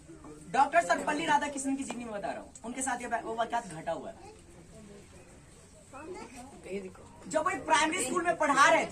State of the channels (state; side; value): identical; both; correlation 1.00